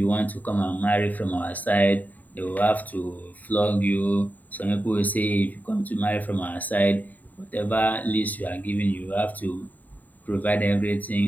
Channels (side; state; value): right; late; 0.081 ms